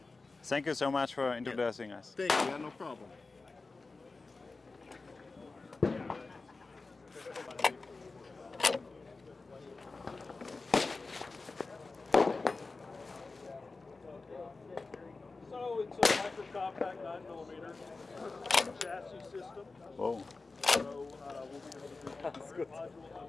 Thank you so much for introducing us. Thank you, yeah, no problem. So it's a micro compact 9mm chassis system. Whoa. So we'll be able to do modules as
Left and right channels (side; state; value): right; quieter; 3.8 dB